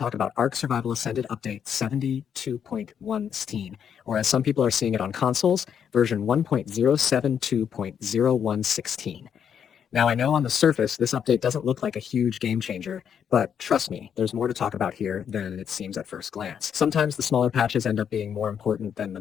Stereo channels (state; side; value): quieter; right; 8.1 dB